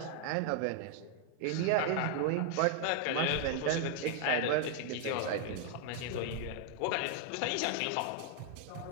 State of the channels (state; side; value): different; both; correlation 0.00